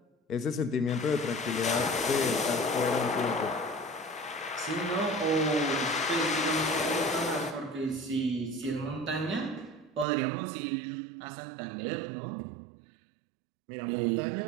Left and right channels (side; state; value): left; drops out; at 10.1 s